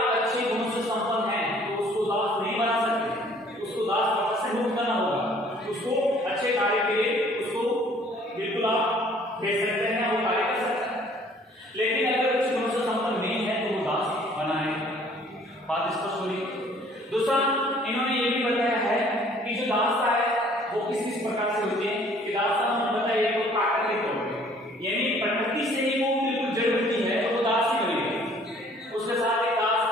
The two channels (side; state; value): both; normal; correlation 0.57